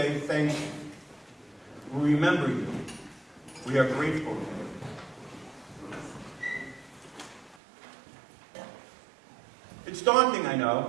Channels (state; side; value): drops out; left; at 7.6 s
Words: thank you. We remember you. We are grateful. It's daunting, I